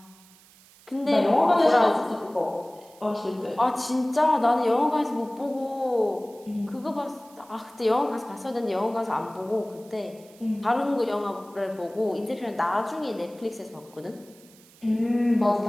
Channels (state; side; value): noise; right; hiss, 26 dB below the sound